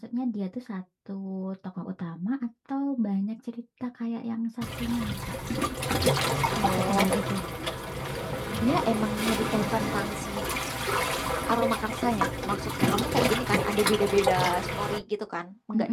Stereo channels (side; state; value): both; identical; correlation 1.00